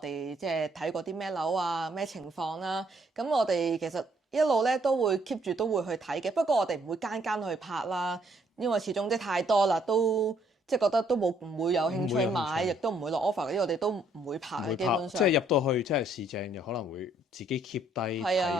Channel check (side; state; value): both; normal; correlation 0.67